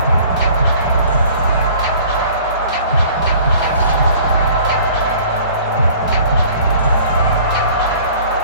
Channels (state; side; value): inverted; both; correlation -0.50